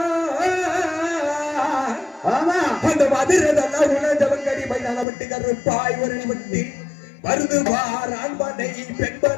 அந்த மதுரை வல்லாகுலா ஜவங்கடி மைதான விட்டு கருப்பாய் ஒரு விட்டு வருது பார் ஆண்பனை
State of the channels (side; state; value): right; drops out; at 5.1 s